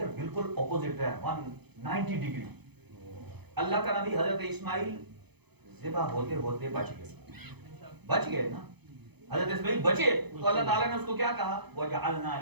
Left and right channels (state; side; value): late; left; 0.98 ms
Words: بالکل اپوزٹ ہے 190 ڈگری. اللہ کا نبی حضرت اسماعیل ذبح ہوتے ہوتے بچ گئے نا. حضرت اسماعیل بچے تو اللہ تعالیٰ نے اس کو کیا کہا؟ وَجَعَلْنَا